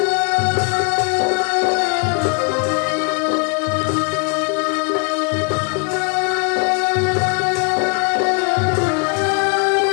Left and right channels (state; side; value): quieter; right; 35.8 dB